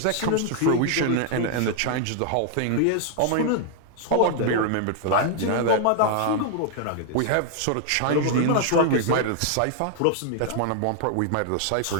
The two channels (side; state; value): both; different; correlation 0.00